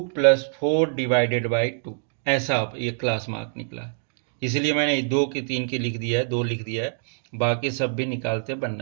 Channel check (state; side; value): silent; left; digital silence